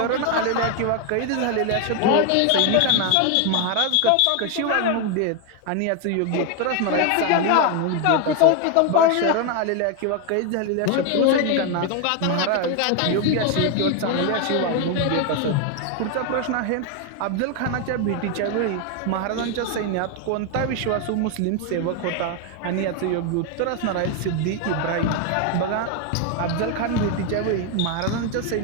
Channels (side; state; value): both; different; correlation 0.01